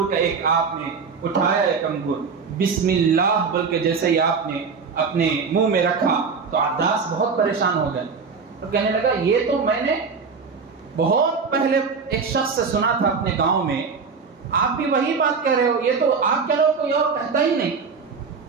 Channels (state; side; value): quieter; left; 5.3 dB